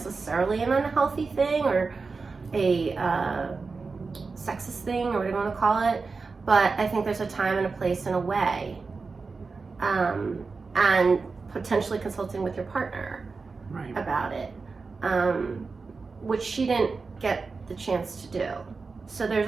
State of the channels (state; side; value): quieter; left; 4.4 dB